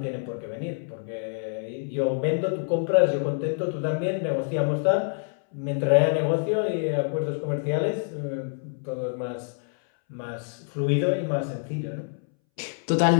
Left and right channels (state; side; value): silent; right; 61 dB below the other